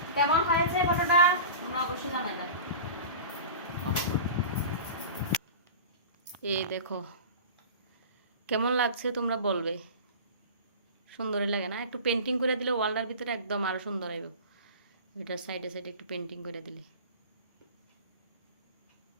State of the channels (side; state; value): both; inverted; correlation -0.35